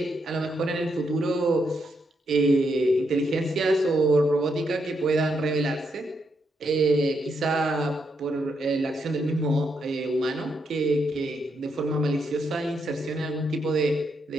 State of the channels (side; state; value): both; normal; correlation 0.79